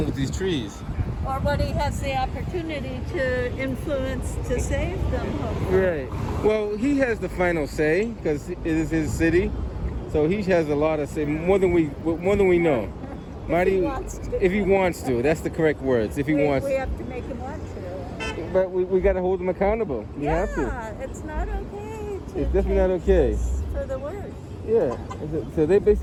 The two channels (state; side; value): identical; both; correlation 1.00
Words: with these trees. Or what he has the opportunity to influence to save them, hopefully. Right. Well, he has the final say because it is his city. So he has a lot of say, more than we know. If he wants to, that's the correct words. If he wants, we have to make him want to. But we got to hold him accountable. We have to. It's not okay. It's definitely not okay. For the worst. Yeah. So they